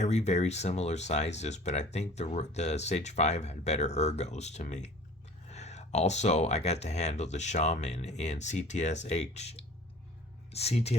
very similar sizes, but I think the Sage 5 had better ergos to me. Also, I got to handle the Shaman in CTS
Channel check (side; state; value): both; normal; correlation 0.47